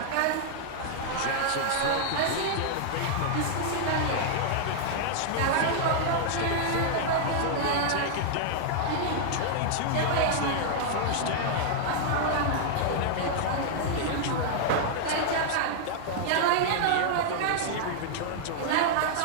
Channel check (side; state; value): both; different; correlation -0.01